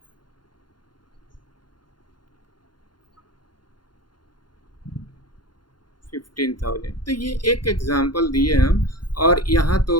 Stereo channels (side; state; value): right; late; 0.71 ms